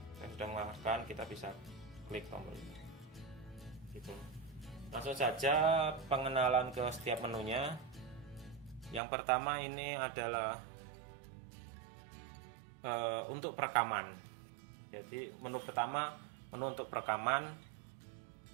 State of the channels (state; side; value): drops out; left; at 9.0 s